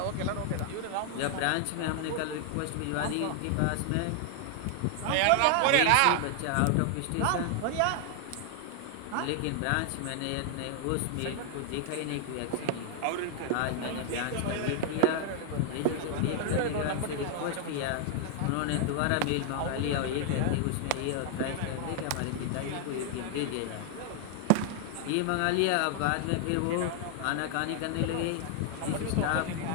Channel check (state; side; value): different; both; correlation 0.00